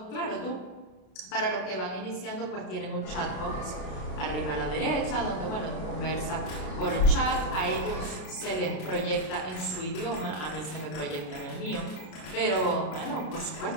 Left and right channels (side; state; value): right; late; 33 ms